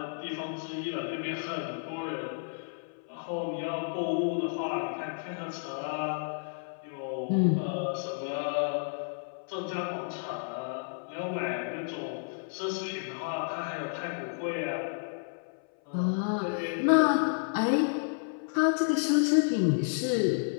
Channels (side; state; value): right; silent; 57 dB below the other